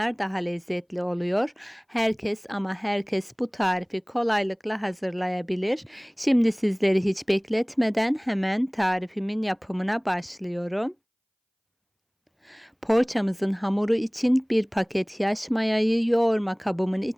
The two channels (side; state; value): both; identical; correlation 1.00